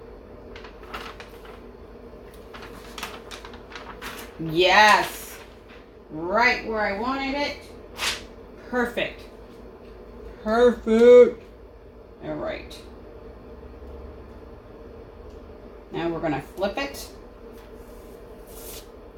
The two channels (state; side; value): identical; both; correlation 1.00